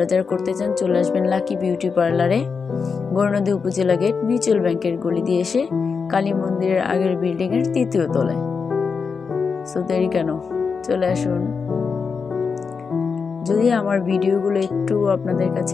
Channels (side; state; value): right; quieter; 5.4 dB